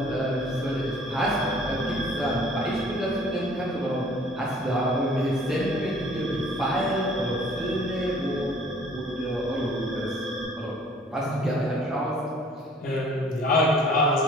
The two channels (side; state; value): both; normal; correlation 0.54